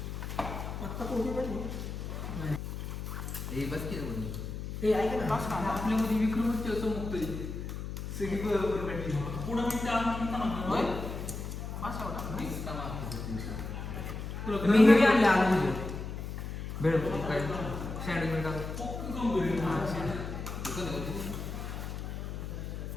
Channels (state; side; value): noise; left; hum, 6 dB below the sound